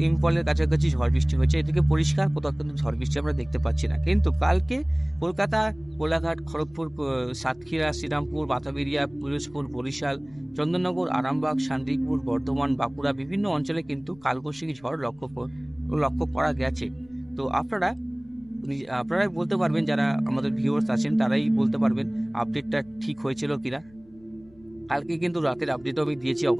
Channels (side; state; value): left; noise; rumble, 27 dB below the sound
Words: ইম্ফলের কাছাকাছি ঝড় বৃষ্টি হয়েছে। এদিকে পরিষ্কার, কোথাও কিন্তু ঝড় বৃষ্টি আমরা দেখতে পাচ্ছি না। কিন্তু কালকে কলকাতা, কোলাঘাট, খড়গপুর, সাতক্ষীরা, শ্রীরামপুর, বাতাবিরিয়া, পিরোজপুর, বরিশাল, চন্দননগর, আরামবাগ, শান্তিপুর, বর্ধমান, বাঁকুড়া বিভিন্ন অঞ্চলে কিন্তু কালবৈশাখী ঝড় লক্ষ্য করা গেছে। তো আপনারাই বলতে পারবেন, যারা আমাদের ভিউয়ার্স আছেন তারাই বলতে পারবেন আপডেটটা ঠিক হয়েছিল কিনা। কালকে কিন্তু রাতের আপডেটও আমি দিয়েছি,